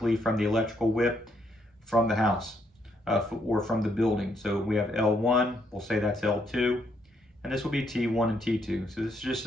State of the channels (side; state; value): both; normal; correlation 0.74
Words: from the electrical whip from the house or from the building. So we have L1, we'll say that's L2, and this will be T1 and T2. So this is just